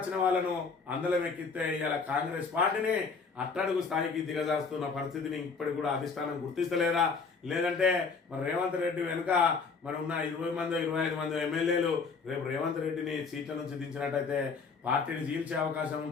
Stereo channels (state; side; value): quieter; right; 4.9 dB